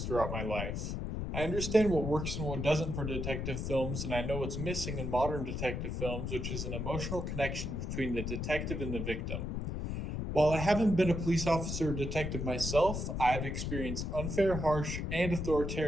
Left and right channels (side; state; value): left; noise; rumble, 3 dB below the sound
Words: my life. I understand what works and what doesn't for detective films, and I know what's missing in modern detective films, which is an emotional connection between the detective and the victim. While I haven't been a police officer or detective myself, I've experienced unfair, harsh, and